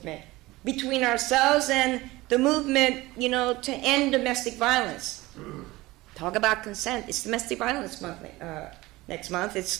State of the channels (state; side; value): quieter; left; 19.7 dB